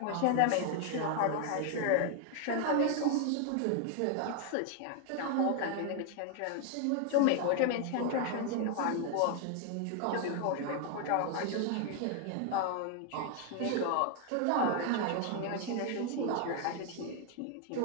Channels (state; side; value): different; both; correlation 0.00